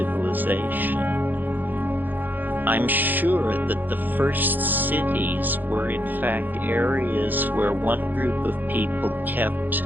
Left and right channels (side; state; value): left; late; 0.087 ms